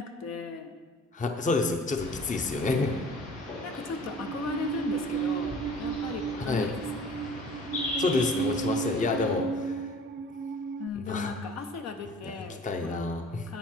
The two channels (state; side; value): normal; both; correlation 0.48